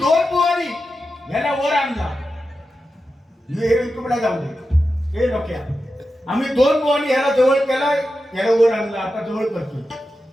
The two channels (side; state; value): both; normal; correlation 0.91